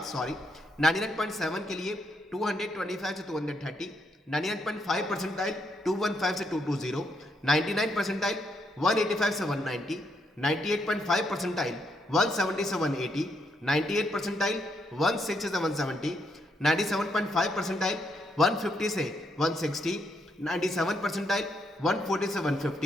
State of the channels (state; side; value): normal; both; correlation 0.77